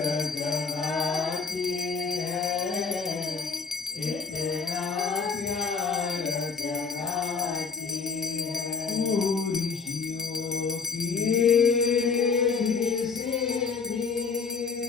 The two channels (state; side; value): quieter; right; 5.1 dB